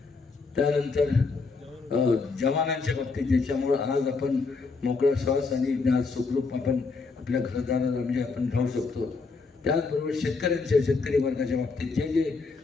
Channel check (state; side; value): quieter; right; 4.3 dB